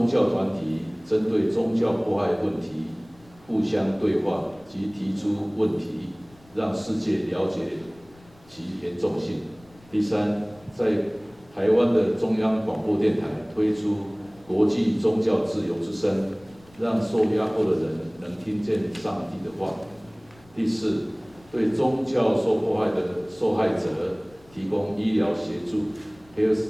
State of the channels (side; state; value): left; noise; rumble, 27 dB below the sound